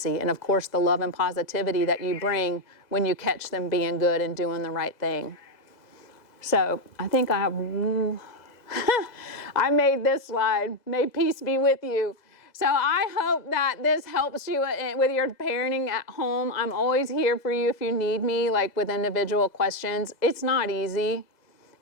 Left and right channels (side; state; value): right; late; 2.0 ms